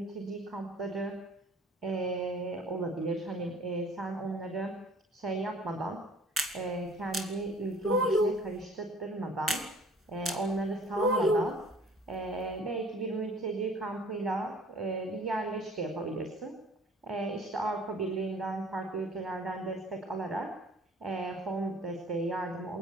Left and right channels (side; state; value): both; normal; correlation 0.51